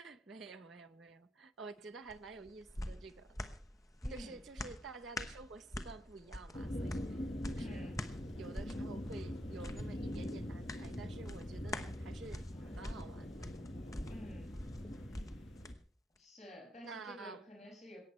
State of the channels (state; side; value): normal; both; correlation 0.81